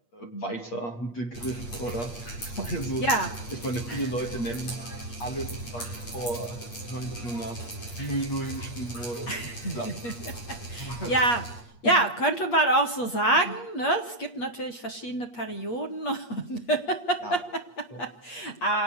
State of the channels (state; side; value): late; right; 8.4 ms